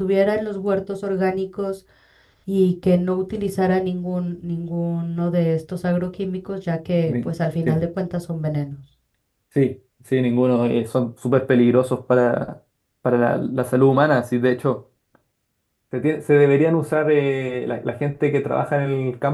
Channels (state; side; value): identical; both; correlation 1.00